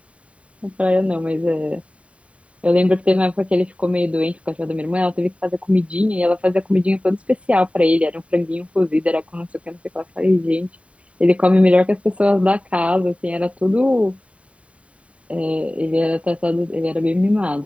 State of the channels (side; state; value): left; late; 0.064 ms